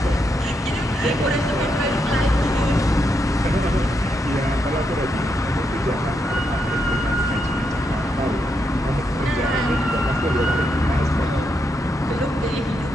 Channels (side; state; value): both; normal; correlation 0.81